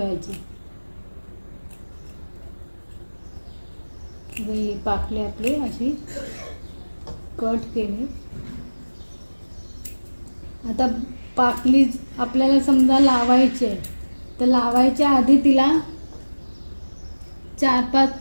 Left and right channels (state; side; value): inverted; both; correlation -1.00